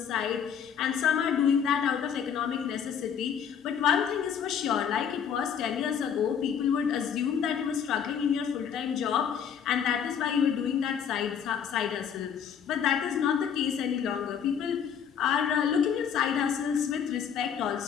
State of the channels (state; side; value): quieter; right; 7.9 dB